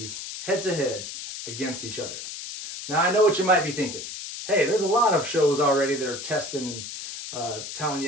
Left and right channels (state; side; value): noise; left; hiss, 9 dB below the sound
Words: head to head against each other. Now, I know what you might be thinking. Hey, there's a lot of shows already that are testing and telling